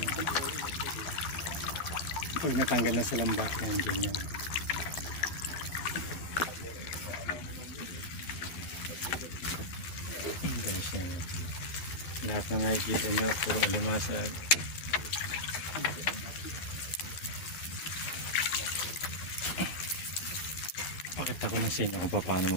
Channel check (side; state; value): right; late; 13 ms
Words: Pag natanggal na sa lambat yan, ganyan. Ayan siya. Lahat na nakikita nyo, puro alimasag. Pakita ko na sa inyo kung paano